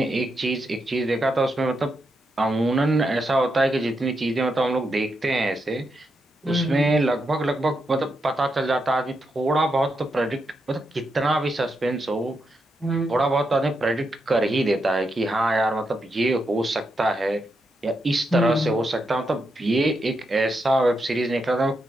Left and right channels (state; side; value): normal; both; correlation 0.83